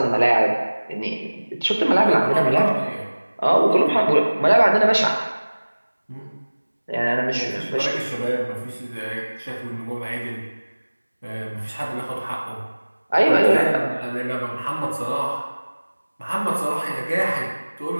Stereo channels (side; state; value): both; inverted; correlation -1.00